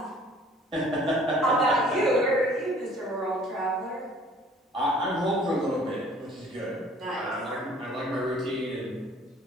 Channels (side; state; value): both; normal; correlation 0.53